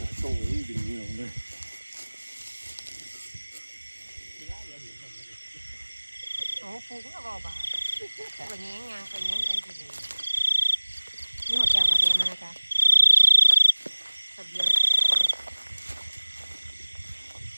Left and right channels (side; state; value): both; inverted; correlation -1.00